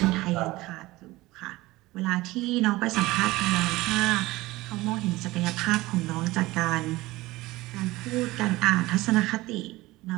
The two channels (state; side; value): quieter; left; 19.3 dB